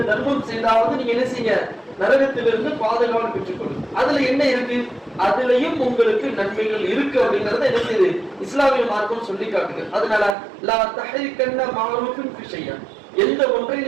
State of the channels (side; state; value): left; drops out; at 10.4 s